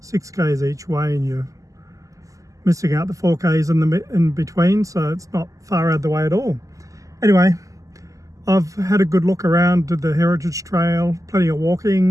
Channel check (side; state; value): left; late; 0.16 ms